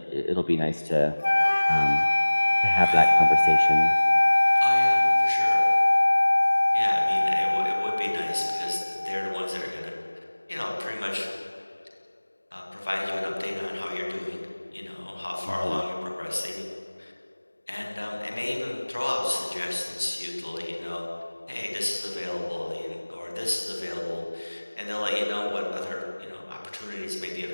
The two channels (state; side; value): inverted; both; correlation -1.00